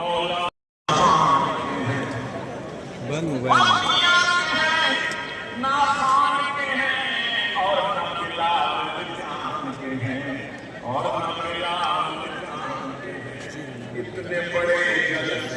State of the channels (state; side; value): identical; both; correlation 1.00